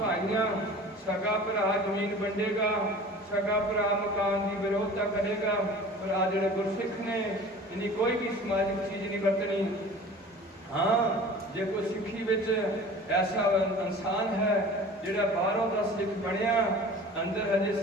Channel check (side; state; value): both; normal; correlation 0.42